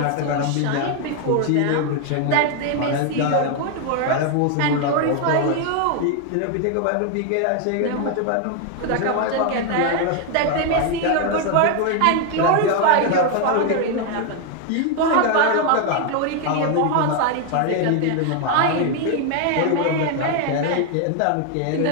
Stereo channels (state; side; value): different; both; correlation 0.01